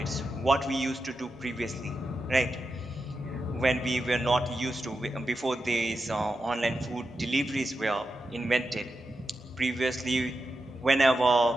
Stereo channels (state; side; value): normal; both; correlation 0.89